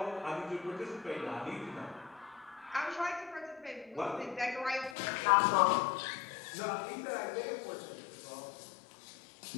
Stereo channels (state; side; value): drops out; right; at 5.0 s